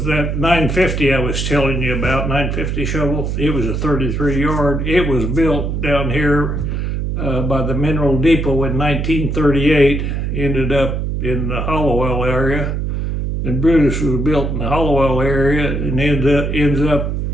that 950 I was telling you about, 950 shovel, it was a 33-yard. It was built down here by the Mineral Depot in 1938, ended up in the Hollowell area, And Brutus was built in the Hollowell area and ends up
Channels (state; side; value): noise; right; hum, 1 dB below the sound